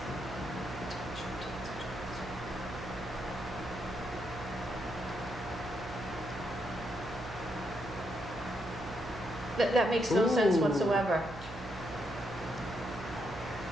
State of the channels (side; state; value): right; noise; hum, 12 dB below the sound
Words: That makes no sense Ooh. whatsoever.